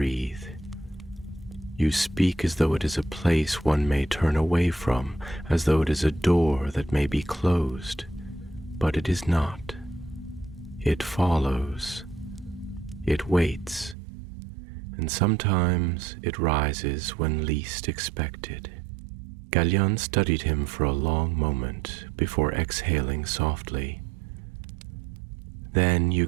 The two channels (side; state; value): left; drops out; at 14.0 s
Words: You speak as though it is a place one may turn away from, as though it is a door that may be closed, but it is not. It follows. It waits, and sometimes it rises when least expected." Gallion studied him for a long moment before exhaling softly. "Then you